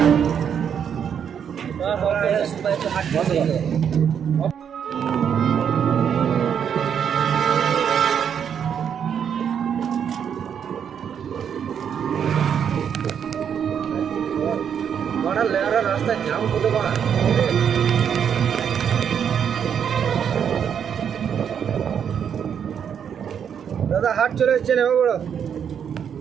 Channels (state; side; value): quieter; left; 8.0 dB